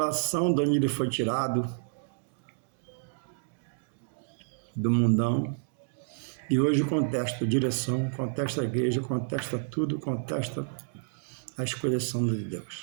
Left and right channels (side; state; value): left; silent; digital silence